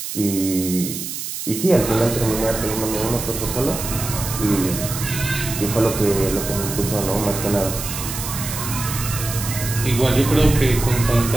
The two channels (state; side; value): noise; right; hiss, 6 dB below the sound